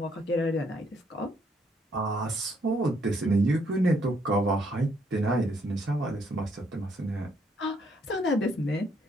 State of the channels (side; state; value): both; normal; correlation 0.70